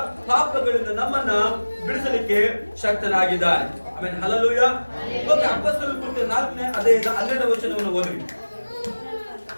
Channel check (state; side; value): inverted; both; correlation -1.00